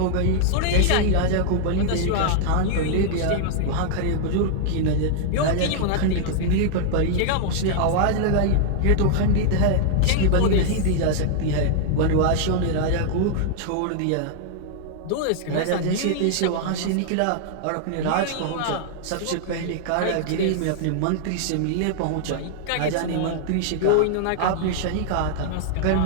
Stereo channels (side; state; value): both; different; correlation -0.01